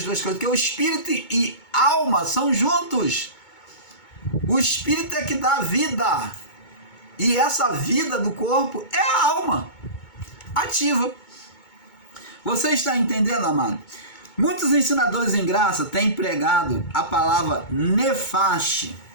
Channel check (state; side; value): late; right; 2.2 ms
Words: duas coisas, porque o espírito e alma são juntos. O espírito é que dá vida. E essa vida do corpo é a alma ativa. Você está entendendo, amado? Muitos ensinadores em graça têm pregado a palavra nefaste,